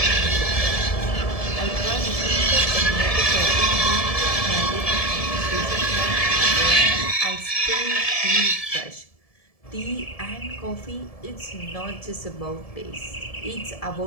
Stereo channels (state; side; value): late; right; 1.7 ms